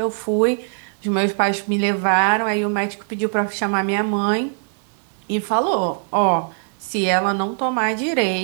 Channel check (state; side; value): silent; left; digital silence